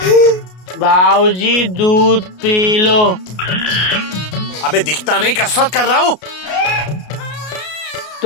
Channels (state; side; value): late; right; 33 ms